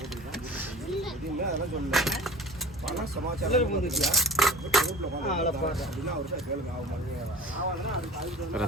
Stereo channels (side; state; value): both; normal; correlation 0.39